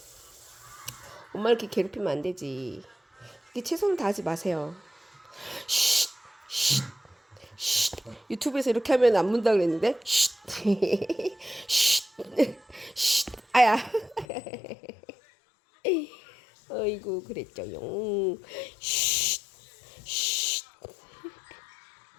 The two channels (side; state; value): right; drops out; at 14.2 s